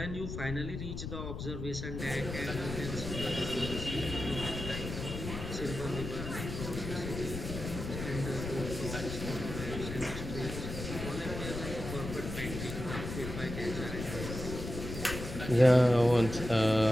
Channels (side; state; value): left; noise; rumble, 6 dB below the sound